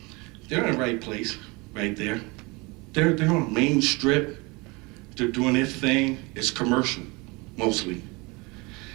They're in the right place, right there. They're on Main Strip. They're doing their thing. It's commercial, mostly.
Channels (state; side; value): quieter; left; 26.2 dB